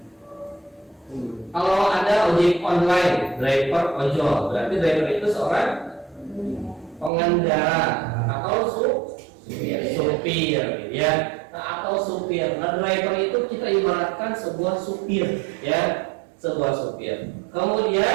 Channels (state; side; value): drops out; left; at 7.1 s